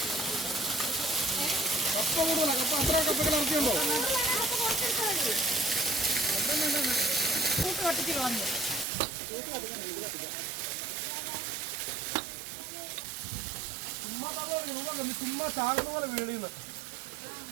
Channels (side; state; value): left; drops out; at 8.8 s